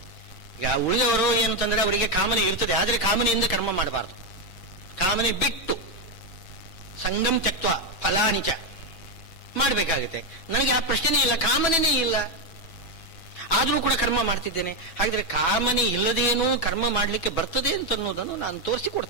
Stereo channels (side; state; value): right; late; 6.0 ms